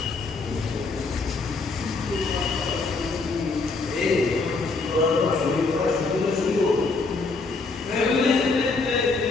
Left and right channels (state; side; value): quieter; right; 3.9 dB